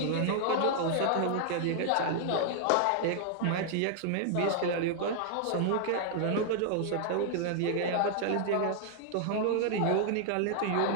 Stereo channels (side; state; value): both; different; correlation 0.00